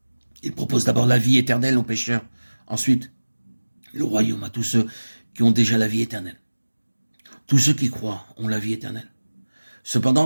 Il propose d'abord la vie éternelle aux pécheurs, ensuite le royaume à tous ceux qui ont déjà la vie éternelle. Tous ceux qui croient ont la vie éternelle.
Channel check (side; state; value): both; inverted; correlation -1.00